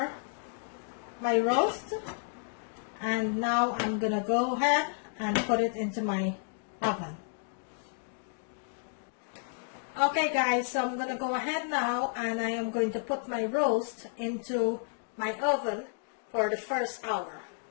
my roast, and now I'm going to go ahead and put it into my oven. Okay guys, so I'm going to go ahead now and I am going to put my roast into my oven for the first hour.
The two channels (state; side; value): silent; right; 57 dB below the other